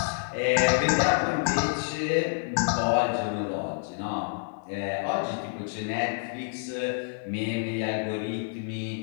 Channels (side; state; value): right; silent; 59 dB below the other